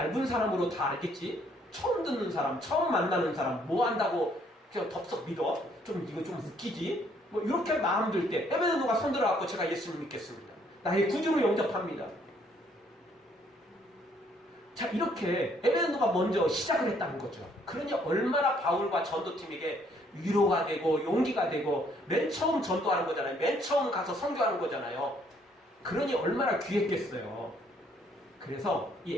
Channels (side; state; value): both; normal; correlation 0.66